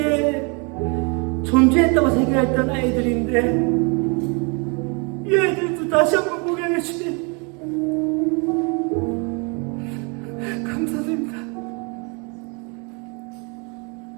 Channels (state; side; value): quieter; left; 32.9 dB